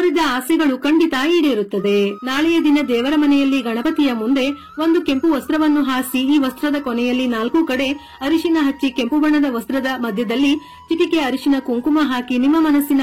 ಆಸೆಗಳು ಖಂಡಿತ ಈಡೇರುತ್ತದೆ. ನಾಳೆಯ ದಿನ ದೇವರ ಮನೆಯಲ್ಲಿ ಗಣಪತಿಯ ಮುಂದೆ ಒಂದು ಕೆಂಪು ವಸ್ತ್ರವನ್ನು ಹಾಸಿ ಈ ವಸ್ತ್ರದ ಕೊನೆಯಲ್ಲಿ 4 ಕಡೆ ಅರಿಶಿನ ಹಚ್ಚಿ ಕೆಂಪು ಬಣ್ಣದ ವಸ್ತ್ರದ ಮಧ್ಯದಲ್ಲಿ ಚಿಟಿಕೆ ಅರಿಶಿನ ಕುಂಕುಮ ಹಾಕಿ ನಿಮ್ಮ ಮನಸ್ಸಿನ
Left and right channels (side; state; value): both; identical; correlation 1.00